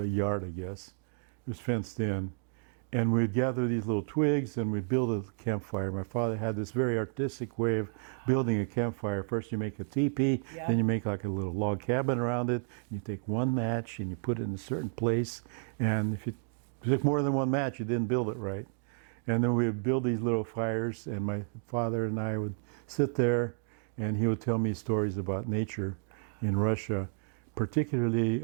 a yard, I guess. It was fenced in. And we'd gather these little twigs and we'd build a campfire. My father had this very artistic way of building a campfire. First you make a teepee, Yeah. then you make like a little log cabin around it. You take one match and you put it in a certain place. And if you took more than one match, you didn't build it right. And then we would build these little fires, and my father and I would sit there, and he would tell me stories about nature in Russia, particularly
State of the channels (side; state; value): left; silent; 57 dB below the other